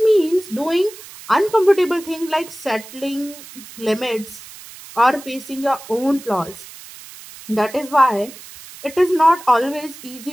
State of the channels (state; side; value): noise; right; hiss, 17 dB below the sound